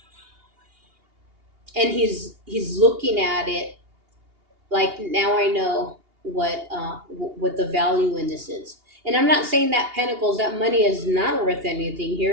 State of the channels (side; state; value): left; late; 2.8 ms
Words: and he's looking at it like, now I know what the value in this is. And I'm not saying that pentacles, that money is not worth anything